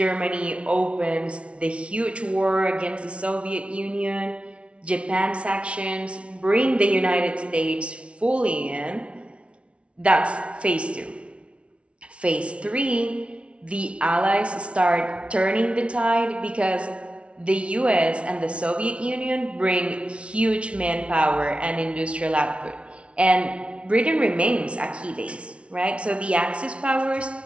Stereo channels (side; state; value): left; late; 0.060 ms